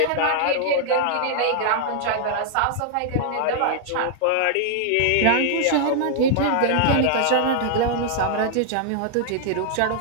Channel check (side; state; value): both; different; correlation -0.01